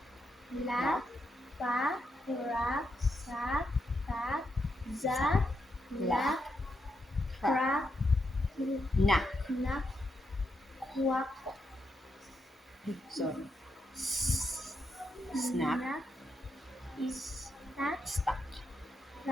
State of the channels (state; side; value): normal; both; correlation 0.82